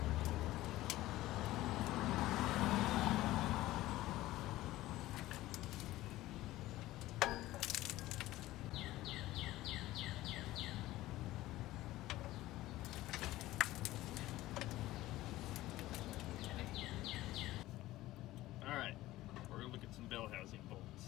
Alright, we're going to look at some bell housing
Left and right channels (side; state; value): right; quieter; 16.5 dB